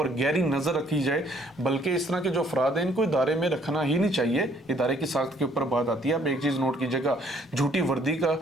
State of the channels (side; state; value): both; normal; correlation 0.63